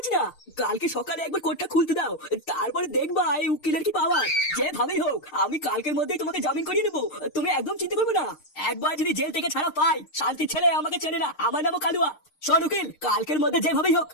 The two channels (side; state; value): right; late; 6.6 ms